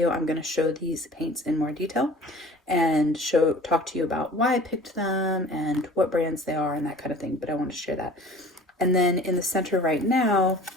I'm going to show these paints in more detail and talk to you about why I picked them and what brands they are and that kind of thing. But I want to share that. And then in the center right now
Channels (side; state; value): both; normal; correlation 0.45